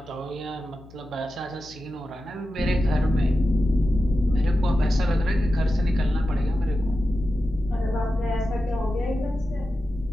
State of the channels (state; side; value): noise; left; hum, 21 dB below the sound